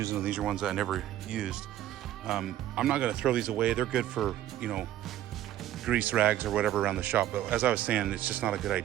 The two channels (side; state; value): left; quieter; 13.0 dB